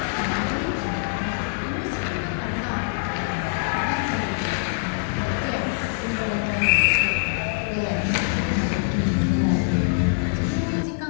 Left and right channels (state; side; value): silent; right; digital silence